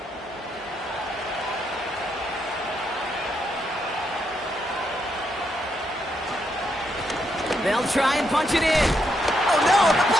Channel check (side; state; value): both; normal; correlation 0.79